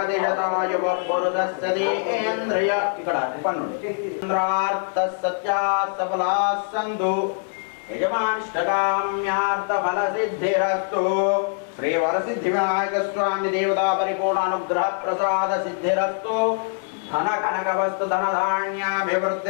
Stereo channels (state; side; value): silent; right; digital silence